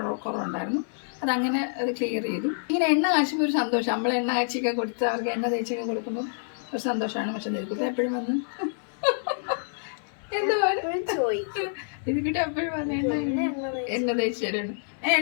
കുറവുണ്ടായിരുന്നു. അതങ്ങനെ അത് ക്ലിയർ ചെയ്തു. ഇങ്ങനെ എണ്ണ കാച്ചുമ്പോൾ ഒരു സന്തോഷം. നമ്മൾ എണ്ണ കാച്ചിയൊക്കെ കൊടുത്ത് അവർക്ക് എണ്ണ തേച്ചൊക്കെ കൊടുക്കുമ്പോൾ ഒരു സന്തോഷമാണ്. പക്ഷെ നിധിക്കുട്ടി എപ്പോഴും വന്ന് എന്താ നിധിക്കുട്ടി എപ്പോഴും വന്ന് എണ്ണ തേച്ച് തരാണ്.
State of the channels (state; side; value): silent; right; 60 dB below the other